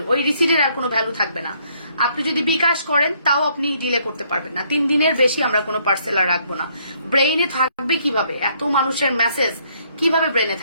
ওই রিসিটের আর কোনো ভ্যালু থাকবে না। আপনি যদি বিকাশ করেন তাও আপনি ডিলে করতে পারবেন না। 3 দিনের বেশি আমরা কোনো পার্সেল আর রাখবো না। ব্রেইনে থাকবে কিভাবে এত মানুষের মেসেজ, কিভাবে ব্রেইনে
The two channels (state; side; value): inverted; both; correlation -0.67